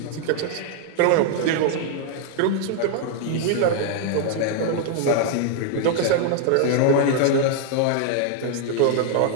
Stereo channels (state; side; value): different; both; correlation 0.00